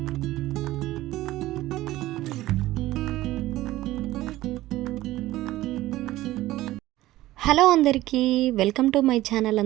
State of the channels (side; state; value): left; quieter; 16.3 dB